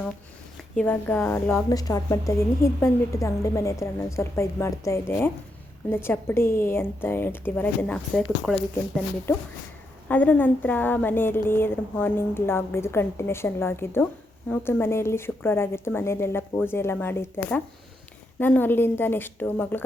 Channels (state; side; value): normal; both; correlation 0.81